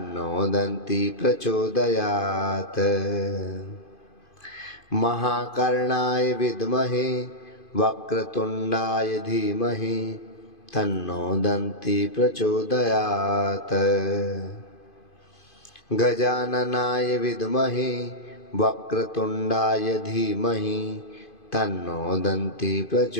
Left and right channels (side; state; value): right; late; 2.5 ms